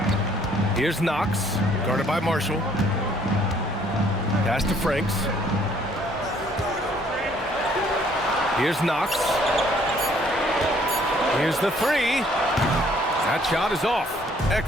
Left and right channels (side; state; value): both; normal; correlation 0.62